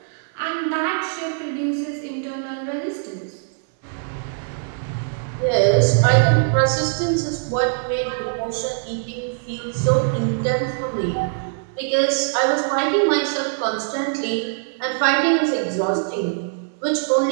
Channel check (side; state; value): left; silent; 64 dB below the other